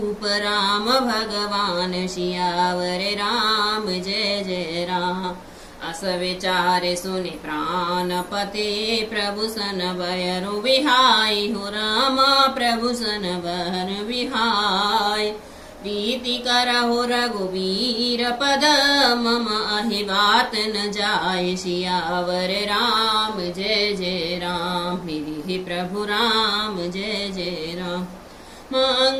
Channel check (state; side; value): identical; both; correlation 1.00